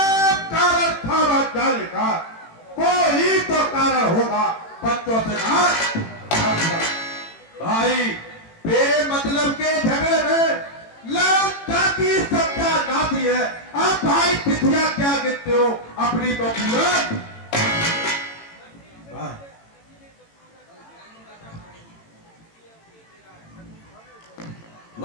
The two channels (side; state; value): right; late; 18 ms